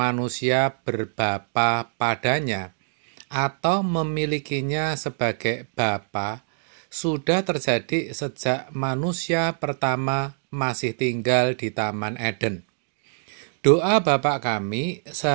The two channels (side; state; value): left; silent; digital silence